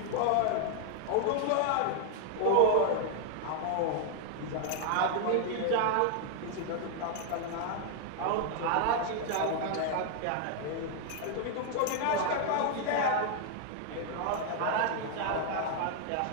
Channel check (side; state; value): both; different; correlation 0.00